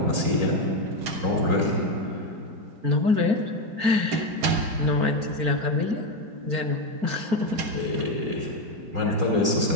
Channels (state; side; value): late; left; 4.4 ms